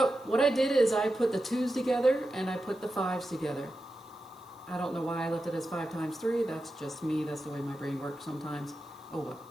what I did is I put the 2's together and I put the 5's together. I don't know why I left it as 5 times 3. That's just me. That's the way my brain works sometimes. Oh well.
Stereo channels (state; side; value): noise; right; hiss, 29 dB below the sound